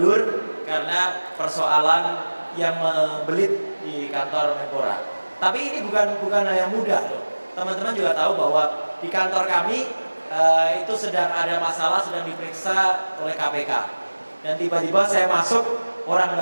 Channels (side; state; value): both; inverted; correlation -1.00